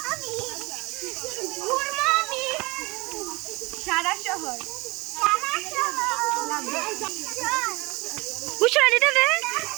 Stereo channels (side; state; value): left; quieter; 24.7 dB